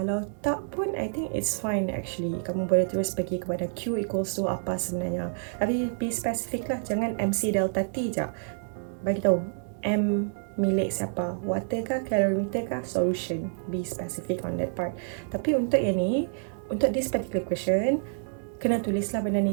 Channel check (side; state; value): left; silent; digital silence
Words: tak pun, I think it's fine actually. Kamu boleh terus pergi kepada Q equals to apa sebenarnya. Tapi be specific lah, jangan MC delta T je. Bagi tahu M milik siapa, water kah, calorimeter kah, solution. Be specific on that part. Tapi untuk yang ni, untuk this particular question, kena tulislah benda ni